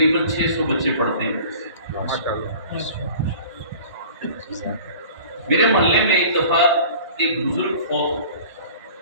600 بچے پڑھتے ہیں۔ میرے محلے میں ایک دفعہ ایک بزرگ فوت ہو،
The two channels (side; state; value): both; inverted; correlation -0.44